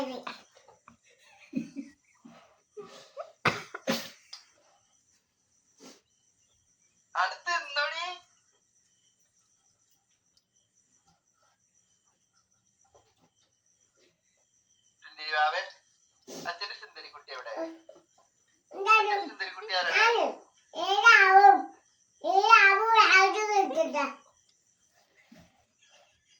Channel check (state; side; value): identical; both; correlation 1.00